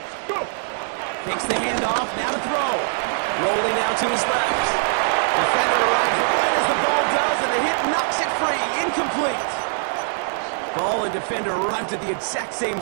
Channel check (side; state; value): left; silent; digital silence